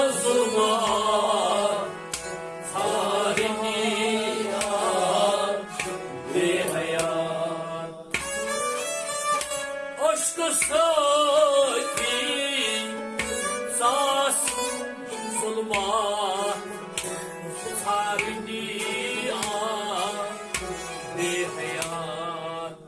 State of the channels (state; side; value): identical; both; correlation 1.00